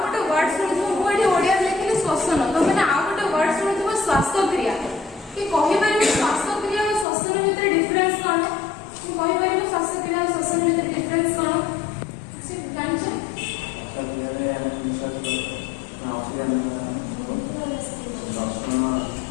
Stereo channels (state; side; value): drops out; right; at 7.1 s